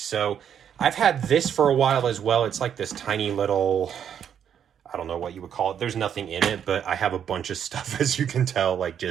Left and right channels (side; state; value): left; quieter; 8.6 dB